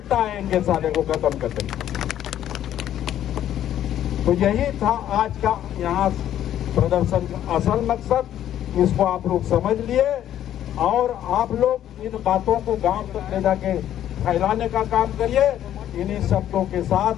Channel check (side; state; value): right; quieter; 11.3 dB